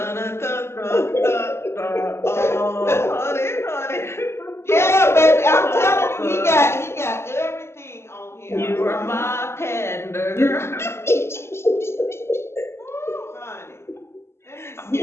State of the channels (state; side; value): late; right; 0.12 ms